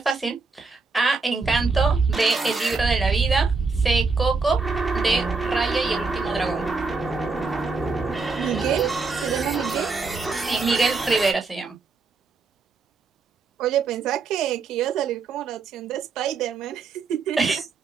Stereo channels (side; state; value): left; quieter; 4.3 dB